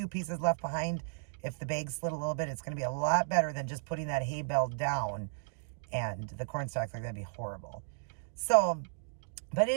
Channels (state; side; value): silent; left; digital silence